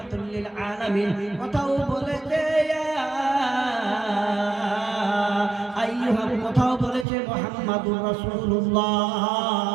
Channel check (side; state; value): left; drops out; at 7.1 s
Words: লিল আলামিন, কোথাও বলেছে ইয়া আইয়ুহা, কোথাও বলেছে মুহাম্মাদুর